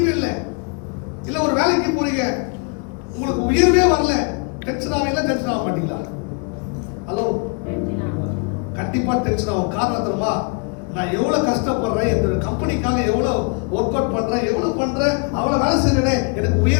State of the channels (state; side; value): quieter; right; 34.7 dB